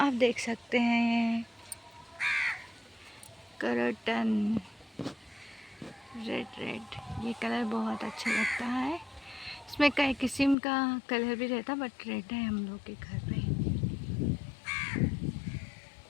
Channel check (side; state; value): right; drops out; at 10.6 s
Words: देख सकते हैं ये करटन रेड रेड, ये कलर बहुत अच्छा लगता है। इसमें कई किस्म का कलर भी रहता, बट रेड है हम लोग के घर पे।